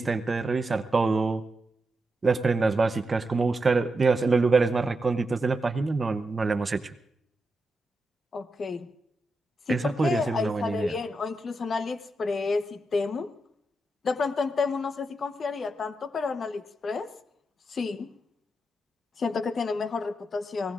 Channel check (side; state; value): both; normal; correlation 0.86